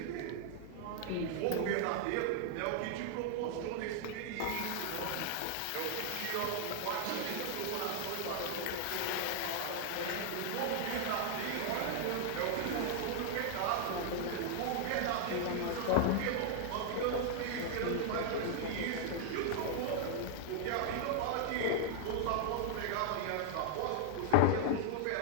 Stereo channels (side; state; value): both; different; correlation 0.00